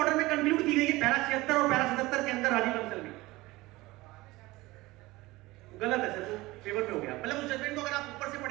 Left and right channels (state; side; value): quieter; left; 20.0 dB